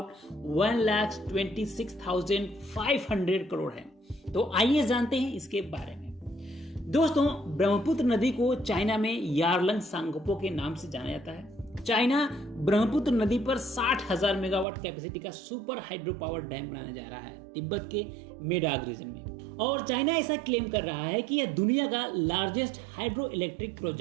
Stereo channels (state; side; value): drops out; left; at 14.7 s